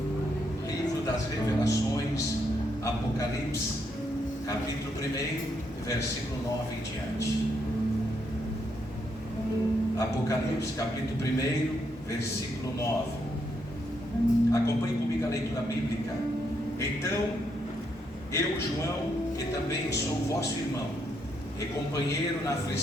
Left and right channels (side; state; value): both; normal; correlation 0.77